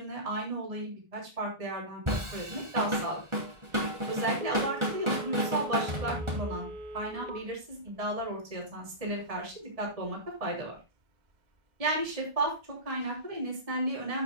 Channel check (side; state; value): left; late; 1.4 ms